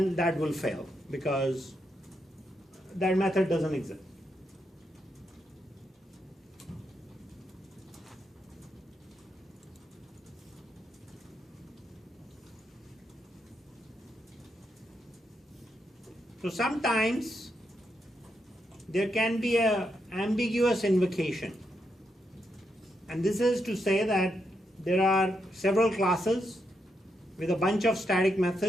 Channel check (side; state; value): both; normal; correlation 0.82